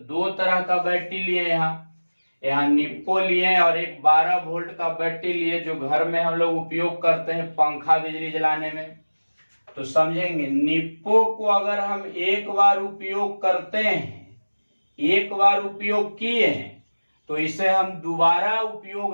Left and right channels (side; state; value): both; inverted; correlation -1.00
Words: तरह का बैटरी लिए, यहाँ निप्पो लिए और एक 12 वोल्ट का बैटरी लिए जो घर में हम लोग उपयोग करते हैं पंखा बिजली जलाने में। तो समझेंगे, निप्पो को अगर हम एक बार उपयोग करते हैं, एक बार उपयोग किए हैं, तो इसे हम दोबारा